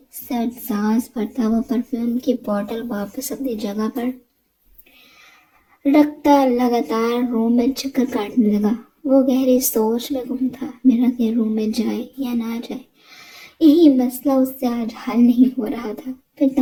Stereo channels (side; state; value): both; identical; correlation 1.00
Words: سرد سانس بھرتا وہ پرفیوم کی بوٹل واپس اپنی جگہ پر رکھتا لگاتار روم میں چکر کاٹنے لگا۔ وہ گہری سوچ میں گم تھا، میرا کے روم میں جائے یا نہ جائے، یہی مسئلہ اس سے آج حل نہیں ہو رہا تھا۔ پھر